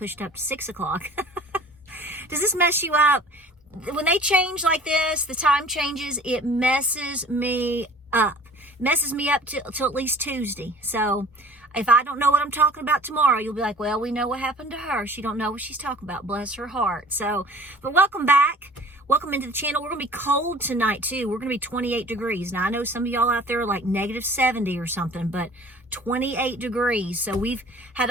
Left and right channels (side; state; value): both; normal; correlation 0.47